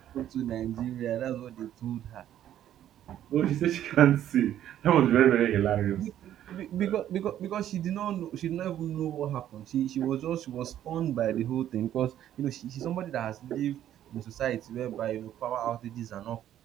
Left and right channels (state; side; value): quieter; left; 11.4 dB